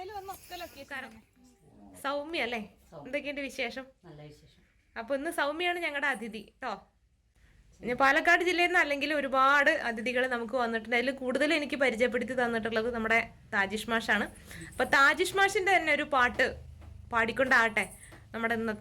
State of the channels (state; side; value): identical; both; correlation 1.00